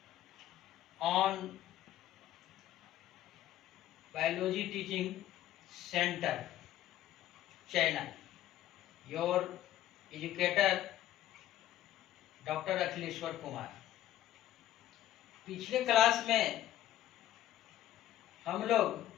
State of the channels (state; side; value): quieter; right; 13.2 dB